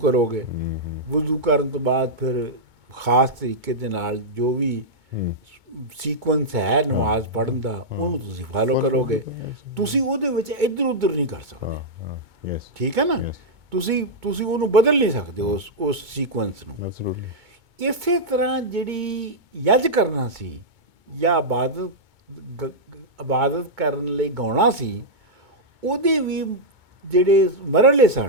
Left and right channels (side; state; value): left; late; 2.2 ms